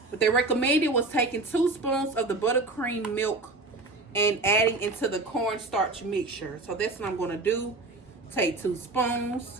they recommended was taking 2 spoons of the buttercream milk and adding into the cornstarch mixture. So that's what I'm going to do. Take 2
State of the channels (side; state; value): left; quieter; 3.3 dB